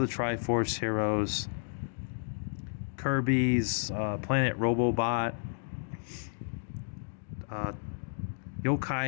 Triforce Heroes, Kirby's Planet Robobot,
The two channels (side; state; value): right; silent; digital silence